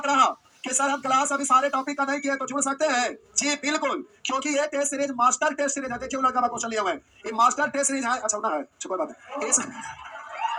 रहा कि सर हम क्लास अभी सारे टॉपिक का नहीं किए तो जुड़ सकते हैं। जी बिल्कुल, क्योंकि ये test series master test series है। देखिए लड़का क्वेश्चन लिया हुआ है, ये मास्टर टेस्ट सीरीज है। अच्छा ना है, कोई बात है इस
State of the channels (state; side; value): identical; both; correlation 1.00